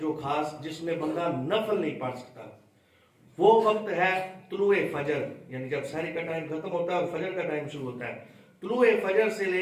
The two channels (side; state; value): both; identical; correlation 1.00